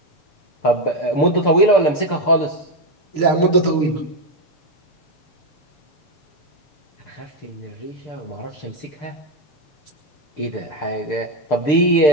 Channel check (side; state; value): right; late; 6.7 ms